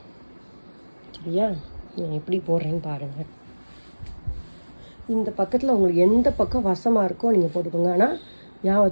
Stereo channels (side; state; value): both; inverted; correlation -1.00